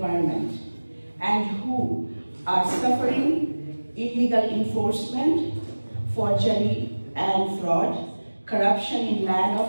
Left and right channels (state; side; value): inverted; both; correlation -1.00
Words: and who are suffering illegal enforcement, forgery and fraud, corruption in land